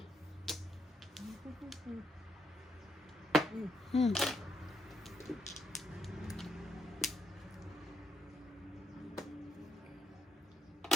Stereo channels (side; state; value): both; normal; correlation 0.75